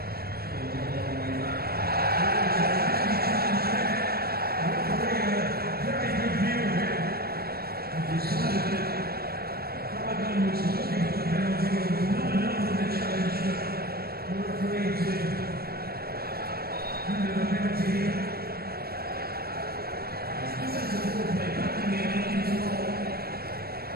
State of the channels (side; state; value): left; late; 0.45 ms